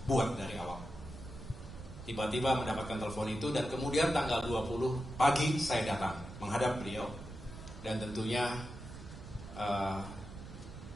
buat dari awal. Tiba-tiba mendapatkan telepon itu, dan kemudian tanggal 20 pagi saya datang menghadap beliau, dan tentunya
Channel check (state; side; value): noise; right; rumble, 13 dB below the sound